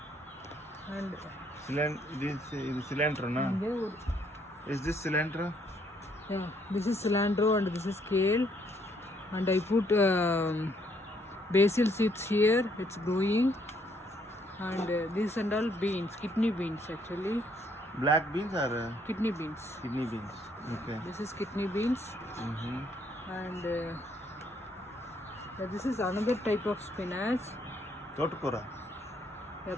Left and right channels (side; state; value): both; normal; correlation 0.68